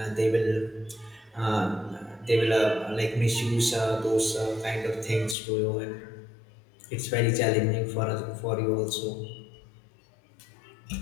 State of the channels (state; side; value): drops out; right; at 5.4 s